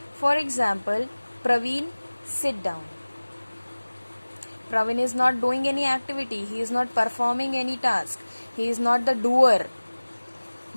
For example, Praveen, sit down. Praveen is not doing any activity. He is not performing any task. He is not the doer.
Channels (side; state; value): both; inverted; correlation -1.00